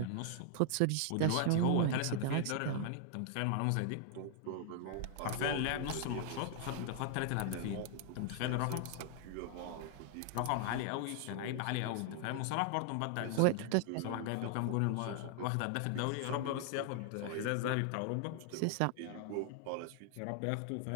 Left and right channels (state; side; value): different; both; correlation 0.00